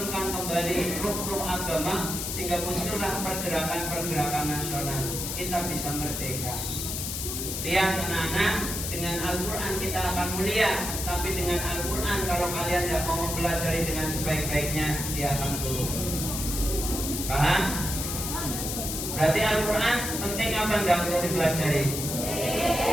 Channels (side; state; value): left; noise; hiss, 4 dB below the sound